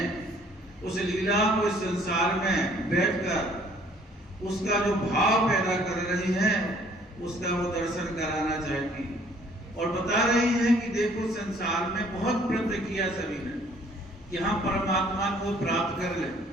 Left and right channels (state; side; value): normal; both; correlation 0.59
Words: उस लीला को इस संसार में बैठकर उसका जो भाव पैदा कर रही है उसका वो दर्शन कराना चाहती है। और बता रही है कि देखो संसार में बहुत प्रयत्न किया सभी ने कि हम परमात्मा को प्राप्त कर लें।